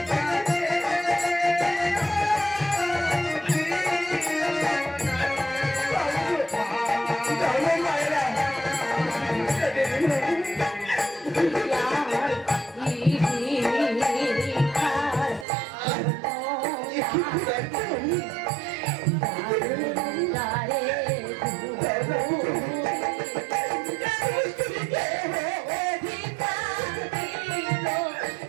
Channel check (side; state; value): left; drops out; at 15.5 s